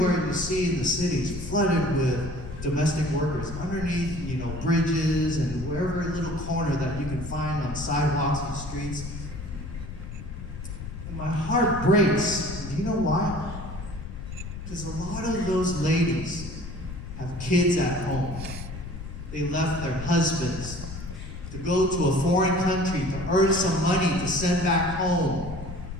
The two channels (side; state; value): left; noise; rumble, 9 dB below the sound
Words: you see in the city is flooded with domestic workers underneath, bridges and wherever little corner that you can find on sidewalks and streets. And my heart breaks. Do you know why? Because a lot of those ladies have kids at home. They left their husbands to go to a foreign country to earn some money to send back home.